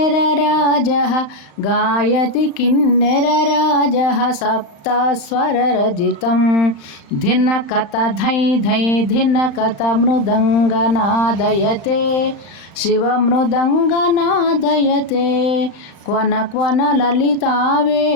सप्तस्वररजितं धिनकत धै धै धिनकत मृदङ्गनादयते शिवमृदङ्गनादयते क्वन क्वन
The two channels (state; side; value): late; right; 35 ms